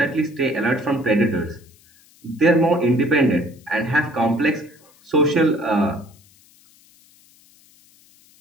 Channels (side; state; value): left; noise; hiss, 29 dB below the sound